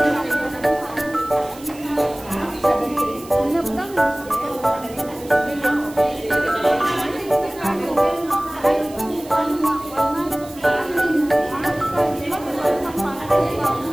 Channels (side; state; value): right; noise; hiss, 20 dB below the sound